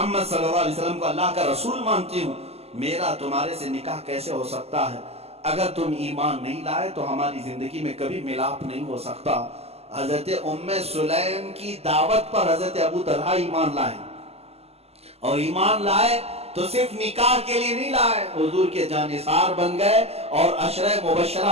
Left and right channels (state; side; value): late; left; 0.29 ms